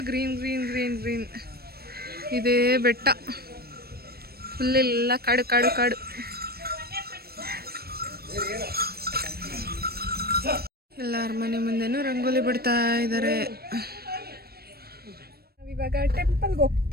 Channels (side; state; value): left; late; 0.45 ms